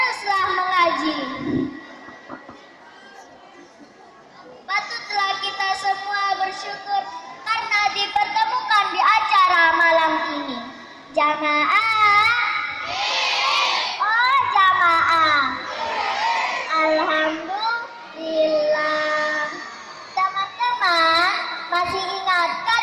mengaji. Patutlah kita semua bersyukur karena dipertemukan di acara malam ini. Jamaah, oh jamaah, alhamdulillah. Teman-teman, masih ingatkah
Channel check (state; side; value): identical; both; correlation 1.00